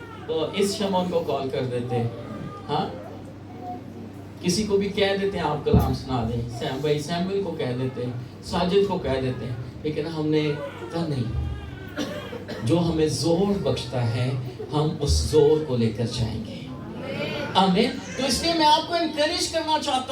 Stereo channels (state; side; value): identical; both; correlation 1.00